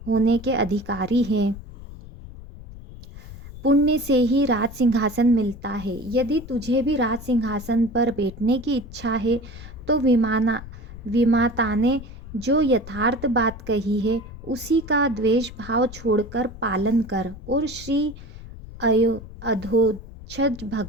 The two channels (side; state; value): left; noise; rumble, 14 dB below the sound